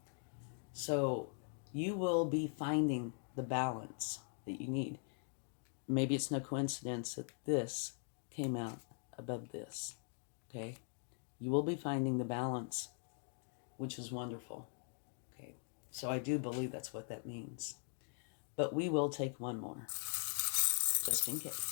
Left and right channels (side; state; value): right; silent; 50 dB below the other